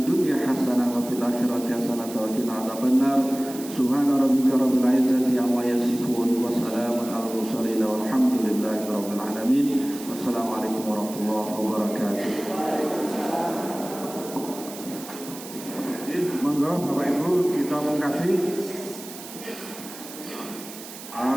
Subhana rabbika rabbil izzati amma yasifun wa salamun alal mursalin walhamdulillahi rabbil alamin. Wassalamualaikum warahmatullahi wabarakatuh. Monggo Bapak Ibu kita mengkasih.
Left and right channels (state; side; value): noise; right; hiss, 14 dB below the sound